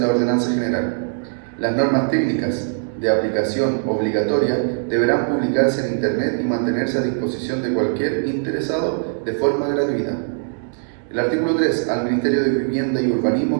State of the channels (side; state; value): left; silent; digital silence